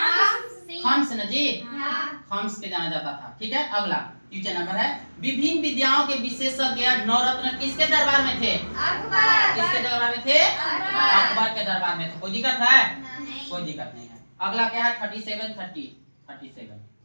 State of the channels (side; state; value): both; inverted; correlation -1.00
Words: हम्स ना जी, हम्स के जाना जाता था। ठीक है, अगला क्वेश्चन नंबर है, विभिन्न विद्याओं के विशेषज्ञ नवरत्न किसके दरबार में थे? किसके दरबार में थे? अकबर के दरबार में थे। कोई दिक्कत है? कोई दिक्कत नहीं है। अगला क्या है? 37।